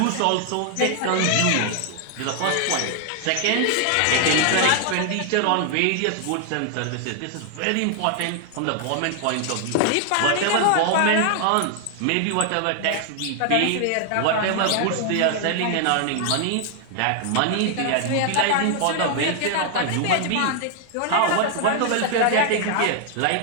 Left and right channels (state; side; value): different; both; correlation 0.00